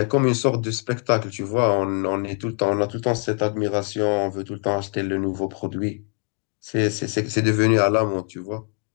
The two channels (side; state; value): right; quieter; 39.2 dB